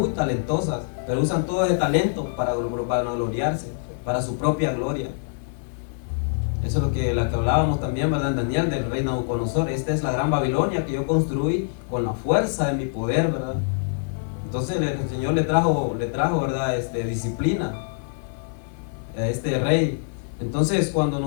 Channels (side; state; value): right; silent; 62 dB below the other